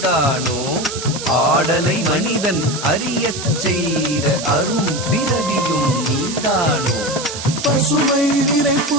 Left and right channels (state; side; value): noise; right; hiss, 8 dB below the sound